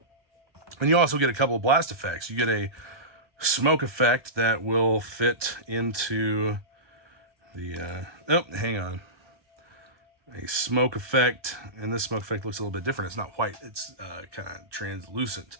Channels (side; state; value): left; late; 1.3 ms